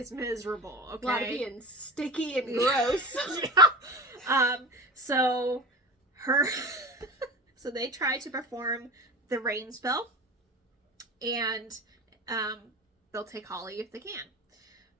miserable, okay? A lot of being sticky and gross. Yeah. So they try to perform the rain spell, and they'll take Holly if they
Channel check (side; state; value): both; normal; correlation 0.31